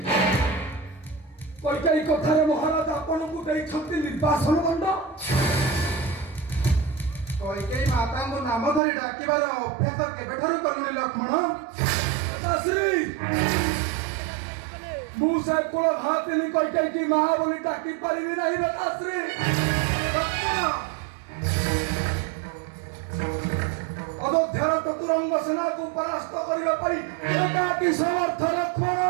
କୈକେୟୀ କଥାରେ ମହାରାଜ ଆପଣଙ୍କୁ ଦେଇଛନ୍ତି ନିର୍ବାସନ ଦଣ୍ଡ। କୈକେୟୀ ମାତାଙ୍କୁ ନାମ ଧରି ଡାକିବାର ଅଭ୍ୟାସ କେବେଠାରୁ କଲୁଣି ଲକ୍ଷ୍ମଣ? ଲତାଶ୍ରୀ, ମୁଁ ସେ କୁଳ ଭାତିନି କୈକେୟୀ ମା ବୋଲି ଡାକି ପାରିବି ନାହିଁ ଲତାଶ୍ରୀ। ଲକ୍ଷ୍ମଣ, ଅଯୋଧ୍ୟାର ଚତୁରଙ୍ଗ ସେନାକୁ ପରାସ୍ତ କରିବା ପାଇଁ ଏକାକୀ ସମର୍ଥ ଲକ୍ଷ୍ମଣ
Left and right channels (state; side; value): drops out; left; at 8.8 s